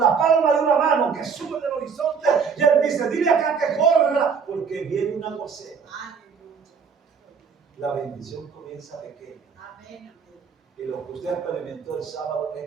palma de una mano que sube del horizonte. Y él dice, dile acá que corra, porque viene un aguacero. La bendición comienza pequeña. Y lo que usted experimentó el sábado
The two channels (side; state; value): left; quieter; 6.0 dB